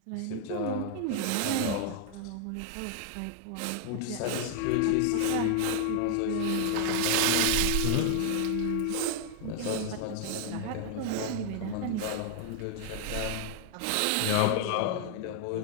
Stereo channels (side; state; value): both; different; correlation 0.00